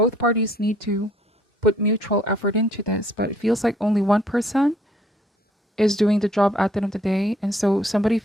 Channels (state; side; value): normal; both; correlation 0.62